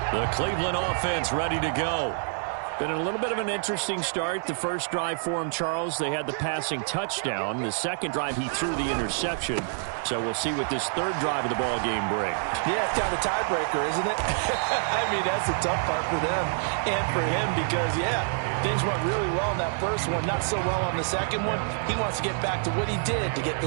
The Cleveland offense ready to go. Been a little bit of an interesting start. The first drive for him, Charles, they had the passing touchdown. The second drive, he threw the interception. So we'll see what this third drive of the ball game brings. Yeah, it's kind of a tiebreaker, isn't it? I mean, that's the tough part for them and for him because, yeah, things went really well in that first one, not so well on the second one. He wants to get back to what he did to get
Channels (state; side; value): silent; left; 60 dB below the other